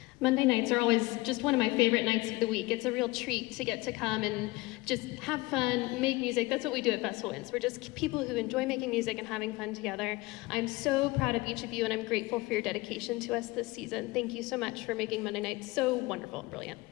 Monday nights are always just one of my favorite nights of the week. It's a real treat to get to come and just have fun, make music. That's what we do at Festival Winds. We're just people who enjoy making music and having fun together. I'm so proud of each of you, and I'm grateful for your dedication to us this season. Thank you so much for making Monday nights so wonderful and brilliant.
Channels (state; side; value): quieter; right; 21.3 dB